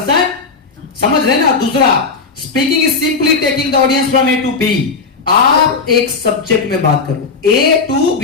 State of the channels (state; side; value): quieter; right; 4.6 dB